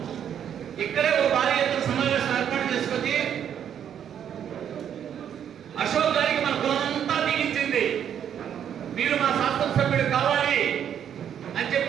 ఇక్కడే ఒక భారీ ఎత్తున సమావేశం ఏర్పాటు చేసుకొని అశోక్ గారికి మన కులమంతా దిగించింది. మీరు మా శాసనసభ్యుడు కావాలి అని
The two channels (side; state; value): left; quieter; 9.1 dB